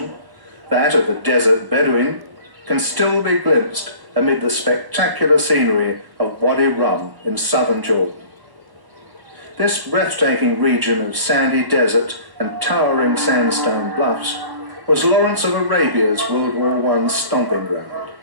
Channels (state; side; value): late; left; 1.1 ms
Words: that of the desert Bedouin, can still be glimpsed amid the spectacular scenery of Wadi Rum in southern Jordan. This breathtaking region of sandy desert and towering sandstone bluffs was Lawrence of Arabia's World War I stomping ground.